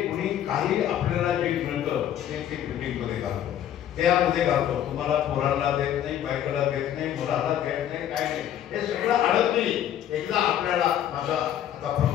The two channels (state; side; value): quieter; right; 10.7 dB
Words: कुणी काही आपल्याला जे मिळतं ते बिल्डिंगमध्ये घालतो, त्यामध्ये घालतो. तुम्हाला पोरांना देत नाही, बायकाला देत नाही, मुलाला देत नाही, काय नाही. हे सगळं आडत नाही. एकदा आपल्याला माझा आता